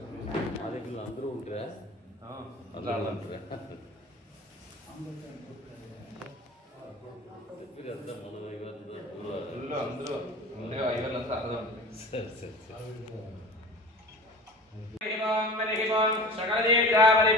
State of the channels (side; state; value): both; normal; correlation 0.38